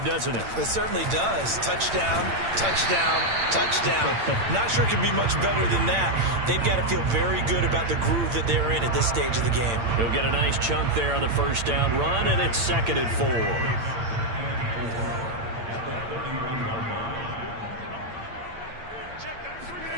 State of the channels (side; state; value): left; late; 8.8 ms